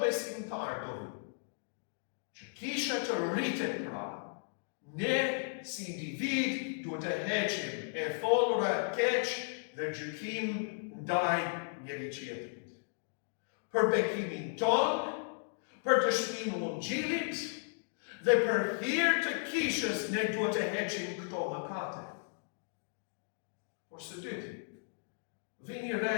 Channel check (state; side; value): silent; right; digital silence